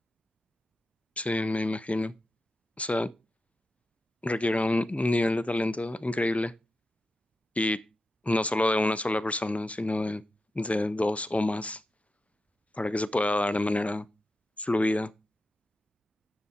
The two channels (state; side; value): normal; both; correlation 0.89